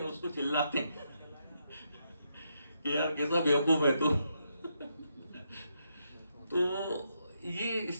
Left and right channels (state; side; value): inverted; both; correlation -0.80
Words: उसको चिल्लाते हैं कि यार कैसा बेवकूफ है तू। तो ये